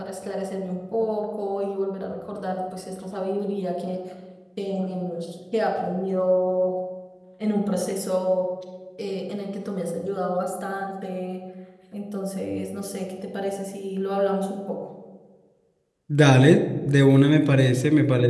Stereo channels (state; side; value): identical; both; correlation 1.00